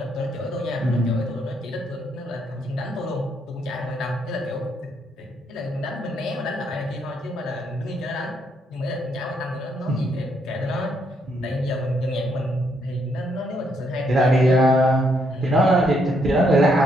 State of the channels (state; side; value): normal; both; correlation 0.74